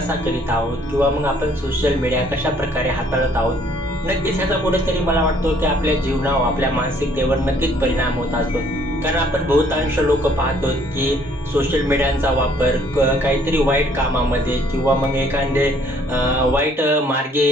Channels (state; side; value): normal; both; correlation 0.62